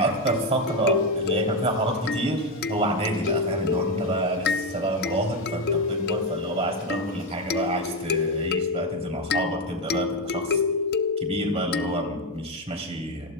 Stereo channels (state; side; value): normal; both; correlation 0.10